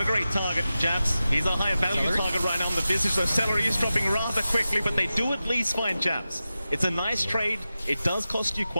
a great target, Jabs. He's a higher value target right now on the Visage, so Celery is dropping rather quickly, but they do at least find Jabs. It's a nice trade. It does cost you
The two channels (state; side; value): inverted; both; correlation -0.93